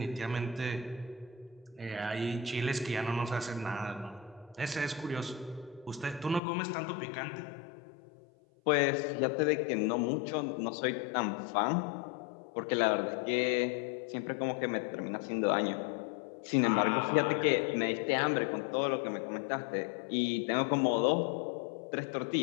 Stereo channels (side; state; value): right; drops out; at 6.4 s